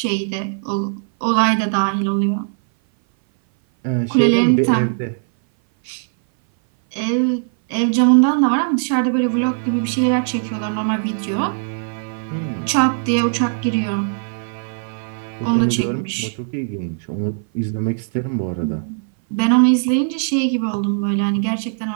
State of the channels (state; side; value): silent; left; 59 dB below the other